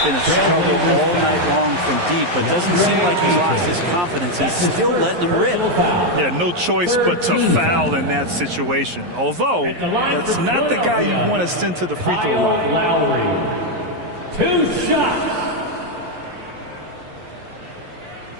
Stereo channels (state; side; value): late; left; 11 ms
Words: been a struggle all night long from deep, but doesn't seem like he's lost his confidence. He's still letting them rip. Yeah, no choice but to foul in that situation. Although, that's not the guy you want to send to the free throw line. 2 shots.